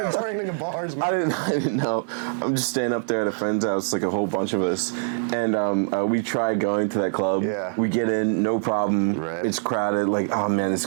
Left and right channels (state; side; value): silent; left; 63 dB below the other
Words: returning to bars, man. I didn't know. I'm just staying up there at a friend's house, like a whole bunch of us, and we tried going to that club. Yeah. We get in, no problem. Right. It's crowded. Like, oh man, it's